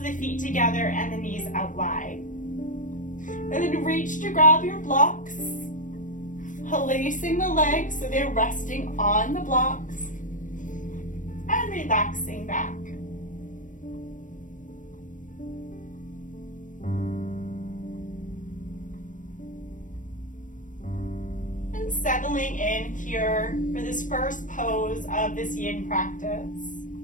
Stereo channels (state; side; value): late; right; 0.37 ms